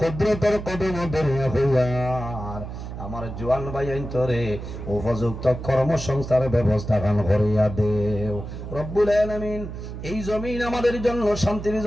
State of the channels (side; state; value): right; noise; hum, 9 dB below the sound